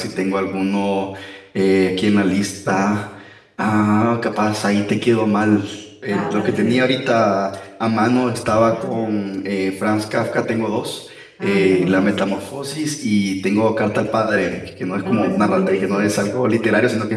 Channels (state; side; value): identical; both; correlation 1.00